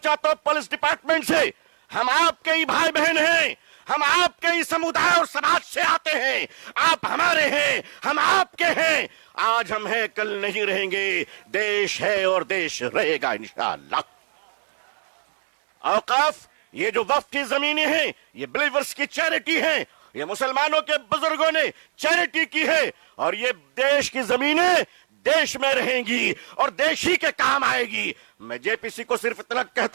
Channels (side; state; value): left; silent; 60 dB below the other